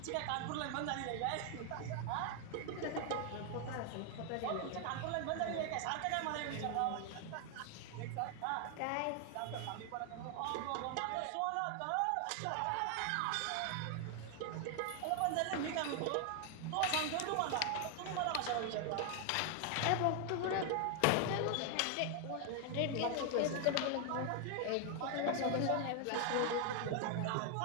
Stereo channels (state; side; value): different; both; correlation 0.00